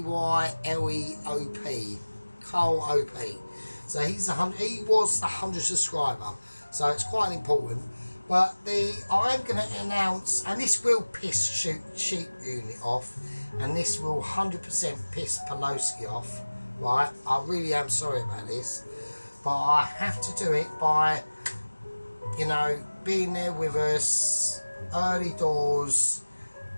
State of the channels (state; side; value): inverted; both; correlation -1.00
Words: Carl O-P. So he was the 100 subscriber, so it's quite important. But I'm going to announce, and this will piss Sheep Unit off, and this will 100% piss Pelosi off, right? I really am sorry about this, but I have to do it by, you know, being there with us, early doors.